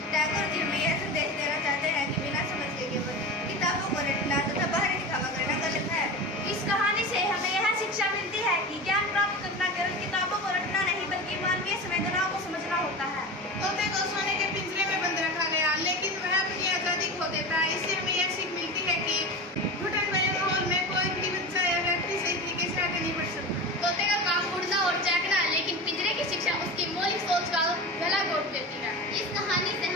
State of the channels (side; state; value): both; normal; correlation 0.28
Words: टैगोर जी हमें यह संदेश देना चाहते हैं कि बिना समझ के केवल किताबों को रटना तथा बाहरी दिखावा करना गलत है। इस कहानी से हमें यह शिक्षा मिलती है कि ज्ञान प्राप्त करना केवल किताबों को रटना नहीं बल्कि मानवीय संवेदनाओं को समझना होता है। तोते को सोने के पिंजरे में बंद रखा गया, लेकिन वह अपनी आजादी खो देता है। इससे हमें यह सीख मिलती है कि घुटन भरे माहौल में कोई भी बच्चा या व्यक्ति सही तरीके से आगे नहीं बढ़ सकता। तोते का काम उड़ना और चहकना है, लेकिन पिंजरे की शिक्षा उसकी मौलिक सोच का गला घोट देती है। इस कहानी से